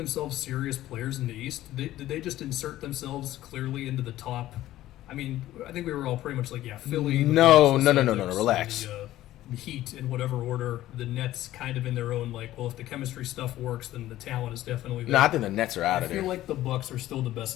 serious players in the East. Did they just insert themselves clearly into the top? I mean, I think we were all pretty much like, yeah, Philly. No, relax. The Heat in whatever order. The Nets kind of in their own, like, well, if the chemistry stuff works, then the talent is definitely there. No, I think the Nets are out of there. I feel like the Bucks are still the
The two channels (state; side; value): quieter; right; 14.6 dB